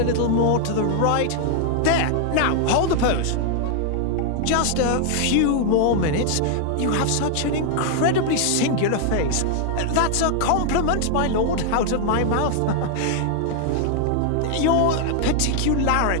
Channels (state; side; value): different; both; correlation 0.00